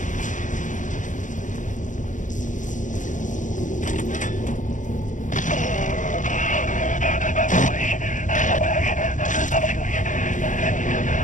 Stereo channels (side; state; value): right; late; 0.37 ms